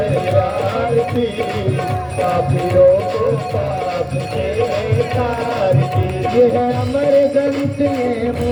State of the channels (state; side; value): identical; both; correlation 1.00